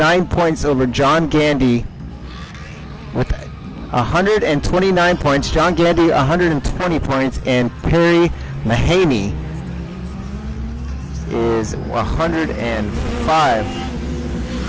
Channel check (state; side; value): identical; both; correlation 1.00